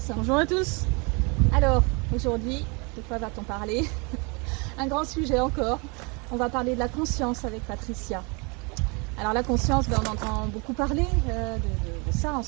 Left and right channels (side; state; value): left; quieter; 30.8 dB